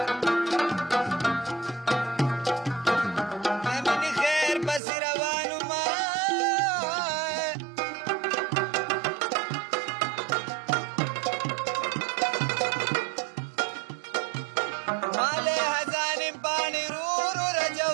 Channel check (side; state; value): left; drops out; at 4.8 s